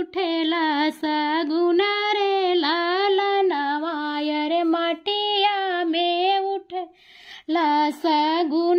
सगुना रे लालनवा। अरे मटिया में उठेला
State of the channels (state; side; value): identical; both; correlation 1.00